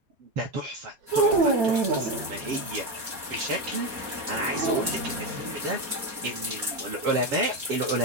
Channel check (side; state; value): left; late; 4.3 ms